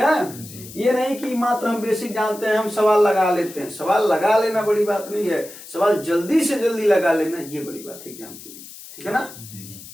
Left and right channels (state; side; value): noise; left; hiss, 16 dB below the sound